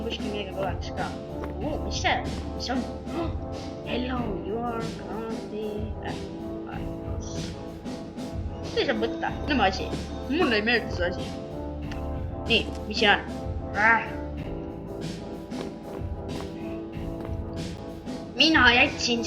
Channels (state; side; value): identical; both; correlation 1.00